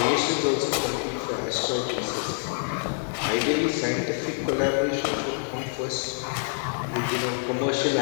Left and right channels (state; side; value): silent; right; 61 dB below the other